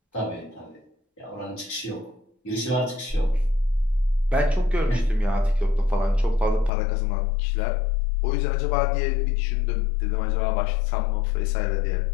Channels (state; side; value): drops out; right; at 6.7 s